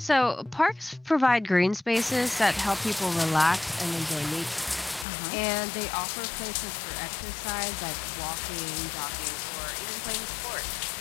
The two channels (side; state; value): right; drops out; at 5.1 s